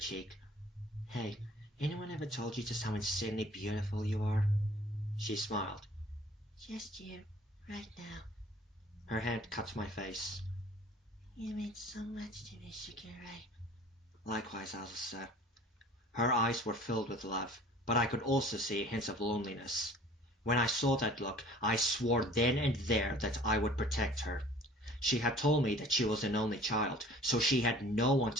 Hey, anyone ever told you just how insanely beautiful you are? She smiled. Just you, right now. Her hand cut my face. You mean so much to me, Shakira. Likewise, Azusa. Her eyes were filled with love, but I could also see hints of loneliness. When I saw that look, I swore then and there that I would protect her. She had told me that she was an only child, so she had no one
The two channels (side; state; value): both; normal; correlation 0.49